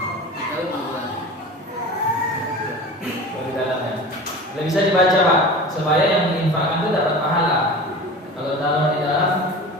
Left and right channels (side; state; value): both; normal; correlation 0.35